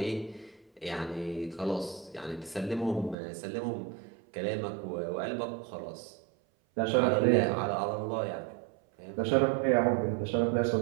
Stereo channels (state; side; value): drops out; left; at 3.2 s